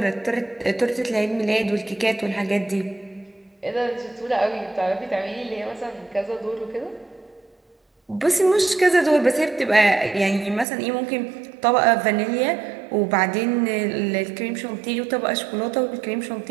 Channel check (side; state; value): left; drops out; at 10.7 s